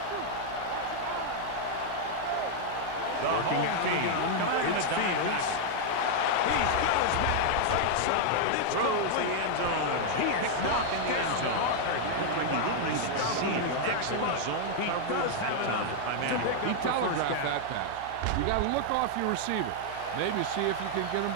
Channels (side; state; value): both; different; correlation 0.00